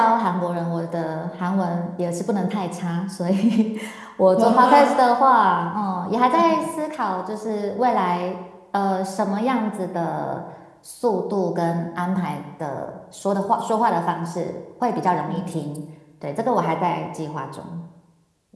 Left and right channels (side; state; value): both; identical; correlation 1.00